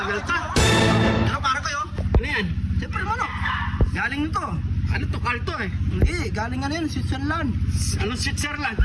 ka. Ano para kayo? Ano yan? Siyempre manok. Galing nito. Ano to? Kalto eh. Hindi, galing ano yun, Switzerland. Anong Switzerland?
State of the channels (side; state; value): both; identical; correlation 1.00